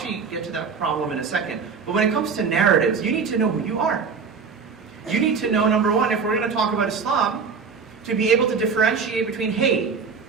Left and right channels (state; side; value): quieter; left; 5.5 dB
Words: get to that problem in a second, but when it comes to narratives, you need to know who you are. You need to know, number one, if we're going to talk about Islam, to be able to differentiate between, hey,